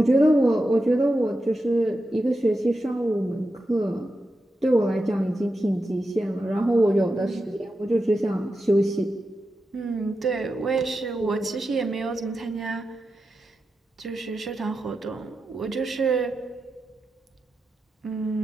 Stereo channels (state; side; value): normal; both; correlation 0.89